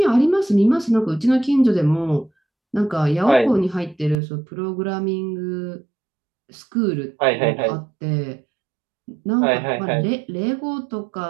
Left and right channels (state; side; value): drops out; left; at 4.2 s